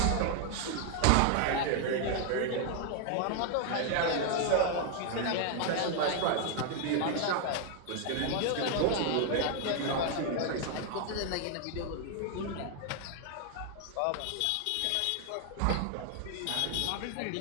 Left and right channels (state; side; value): different; both; correlation 0.00